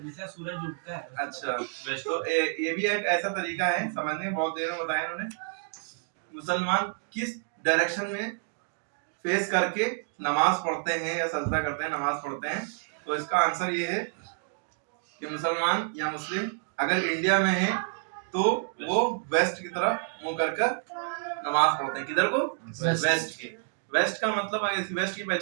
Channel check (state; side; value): silent; left; digital silence